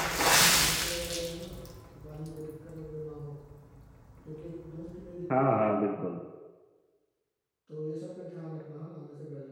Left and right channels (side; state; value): both; identical; correlation 1.00